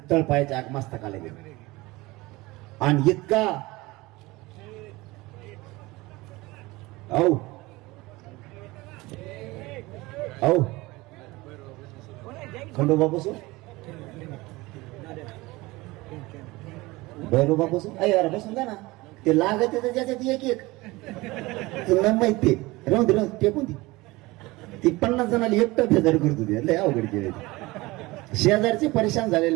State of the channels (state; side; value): quieter; left; 21.3 dB